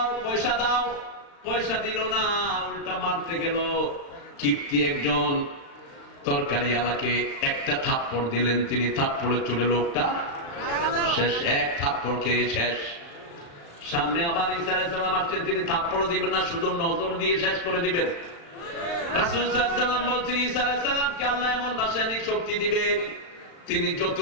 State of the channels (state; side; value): late; right; 35 ms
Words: পয়সা দাও। পয়সা দিল না, উল্টা মারতে গেল। কিপ্তি একজন তরকারি আলাকে একটা থাপ্পড় দিলেন, তিনি থাপ্পড়ের চোটে লোকটা শেষ, এক থাপ্পড় খেয়ে শেষ। সামনে আবার ঈসা আলাইহিস সালাম আসছেন, তিনি থাপ্পড় দিবেন না, শুধু নজর দিয়ে শেষ করে দিবেন। রাসূল সাল্লাল্লাহু আলাইহি ওয়াসাল্লাম বলছেন ঈসা আলাইহিস সালামকে আল্লাহ এমন রাসায়নিক শক্তি দিবেন, তিনি